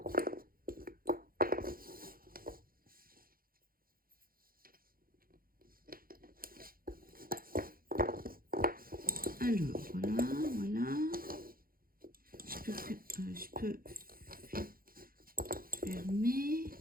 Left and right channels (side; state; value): left; late; 0.42 ms